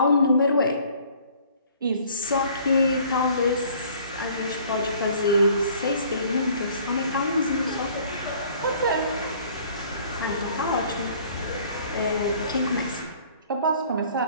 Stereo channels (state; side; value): inverted; both; correlation -0.55